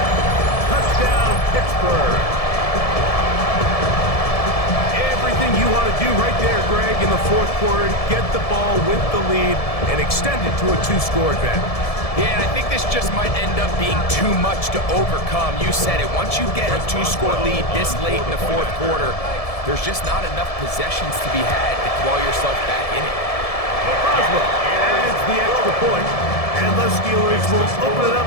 Touchdown, Pittsburgh. Everything you want to do right there, Greg, in the 4th quarter. Get the ball with the lead and extend it to a 2-score advantage. Yeah, and I think this just might end up being too much to overcome. You said it. Once you get a 2-score lead this late in the 4th quarter, there's just not enough possessions to be had to claw yourself back in it. Boswell adds the extra point, and the Steelers will open it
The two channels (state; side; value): late; right; 1.7 ms